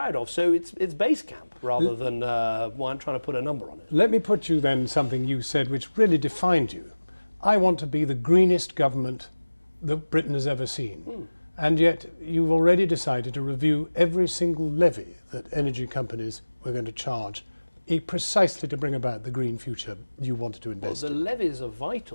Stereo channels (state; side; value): inverted; both; correlation -1.00